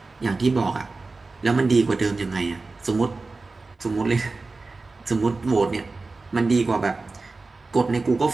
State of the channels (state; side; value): quieter; left; 3.7 dB